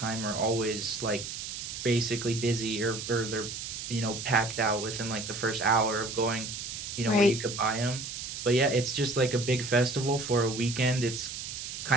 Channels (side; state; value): right; noise; hiss, 7 dB below the sound